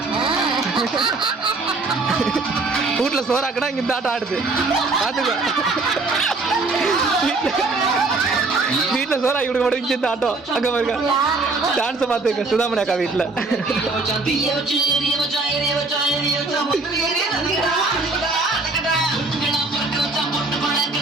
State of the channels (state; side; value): quieter; left; 3.6 dB